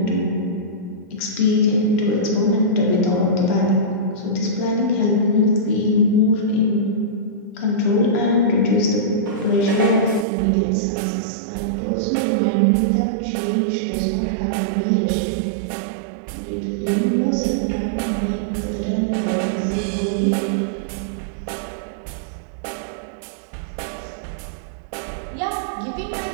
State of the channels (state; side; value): drops out; left; at 10.2 s